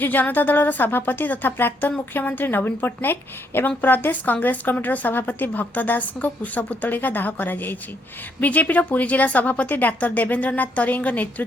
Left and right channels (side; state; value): both; normal; correlation 0.73